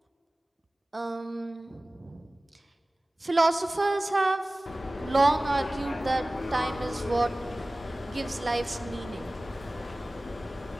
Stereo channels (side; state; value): both; normal; correlation 0.98